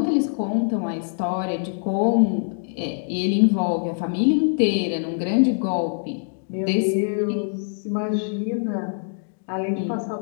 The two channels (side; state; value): right; silent; digital silence